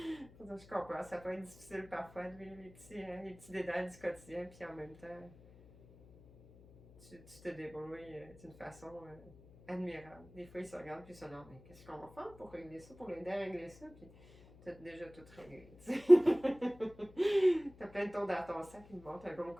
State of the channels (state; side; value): noise; left; hum, 22 dB below the sound